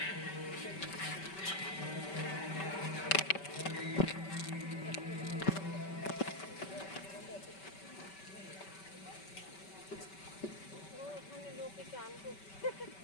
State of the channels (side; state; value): right; late; 5.2 ms